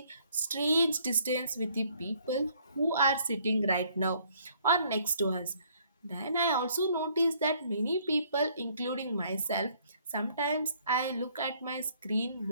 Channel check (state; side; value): inverted; both; correlation -0.63